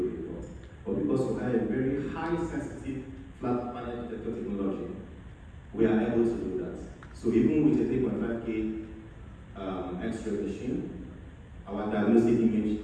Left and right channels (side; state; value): both; identical; correlation 1.00